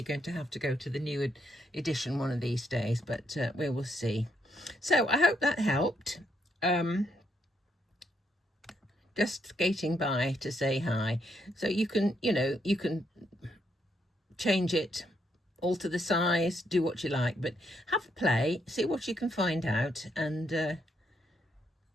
going to have to go to the new edition one of these days, but we will see. So I hope that helped. Just skating by to say hi. So you can, you can change it, alter the size, do what you like, but have a play, see what you can find out, and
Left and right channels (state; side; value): normal; both; correlation 0.76